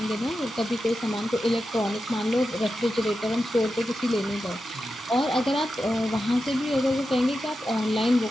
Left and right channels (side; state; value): both; normal; correlation 0.90